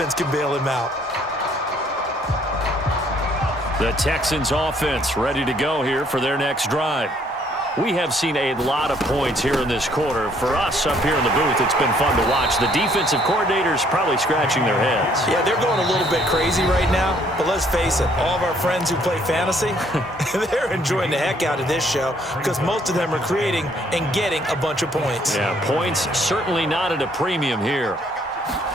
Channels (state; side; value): normal; both; correlation 0.65